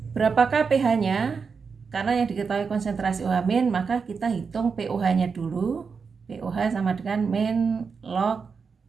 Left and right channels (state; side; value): quieter; left; 5.5 dB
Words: Berapakah pH-nya? Karena yang diketahui konsentrasi OH- maka kita hitung pOH-nya dulu. pOH sama dengan min log